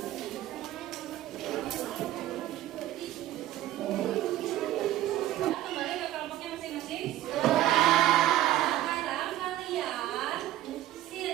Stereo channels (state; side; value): quieter; left; 13.9 dB